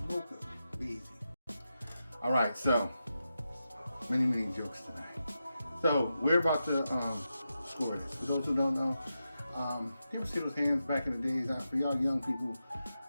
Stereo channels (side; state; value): both; inverted; correlation -0.89